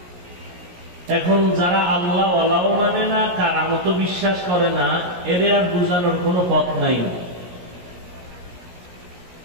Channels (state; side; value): late; left; 17 ms